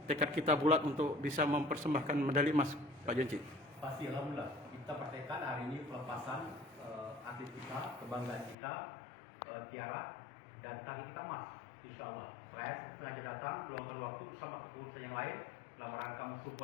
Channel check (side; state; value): right; drops out; at 8.6 s